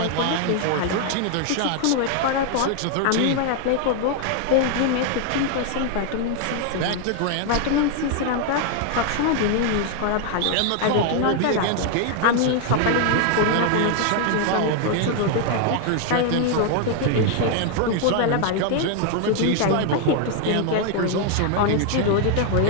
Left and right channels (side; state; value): both; different; correlation 0.00